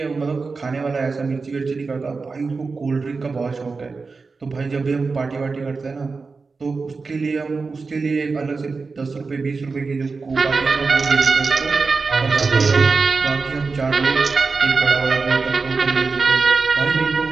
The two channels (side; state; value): left; quieter; 4.4 dB